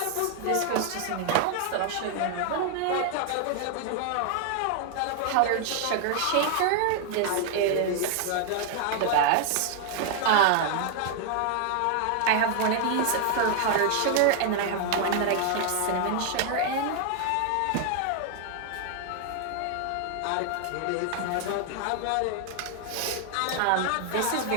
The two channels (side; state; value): both; different; correlation 0.00